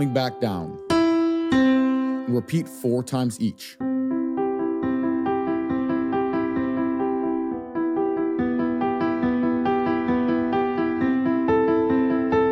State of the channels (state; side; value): identical; both; correlation 1.00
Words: back down. And repeat 4 times each.